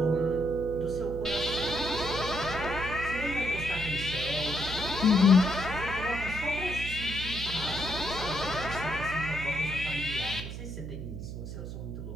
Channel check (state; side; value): noise; right; hum, 8 dB below the sound